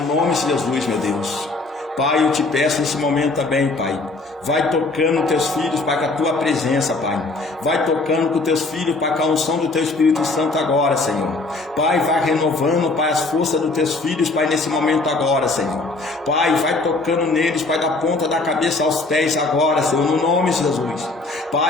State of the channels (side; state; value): right; quieter; 3.3 dB